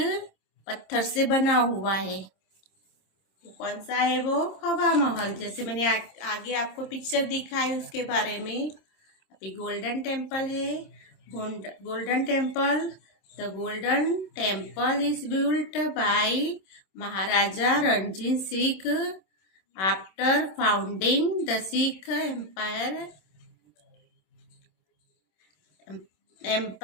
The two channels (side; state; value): right; late; 27 ms